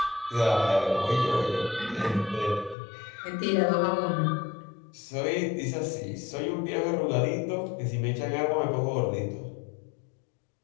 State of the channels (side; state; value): right; drops out; at 2.8 s